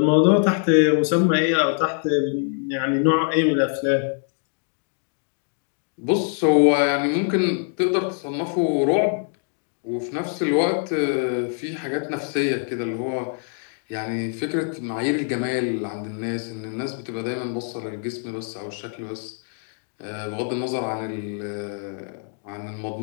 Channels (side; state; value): right; silent; 57 dB below the other